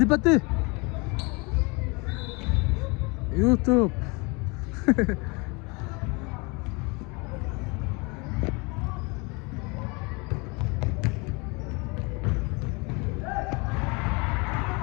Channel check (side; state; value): right; quieter; 28.8 dB